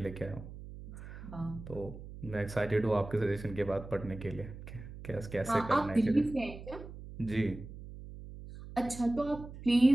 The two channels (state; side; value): noise; right; hum, 13 dB below the sound